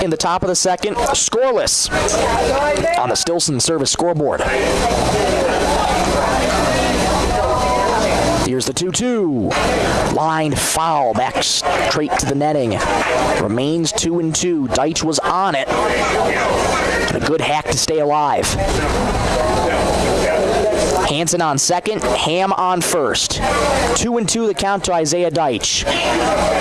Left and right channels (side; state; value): both; identical; correlation 1.00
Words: in the top of the second. Scoreless on the Stilson service scoreboard. The Here's the 2-2. Line foul, back straight to the netting. Remains 2-2. Deitch was on it. A good hack to stay alive. Hansen on second, Ham on first. 2-2 the count to Isaiah Deitch.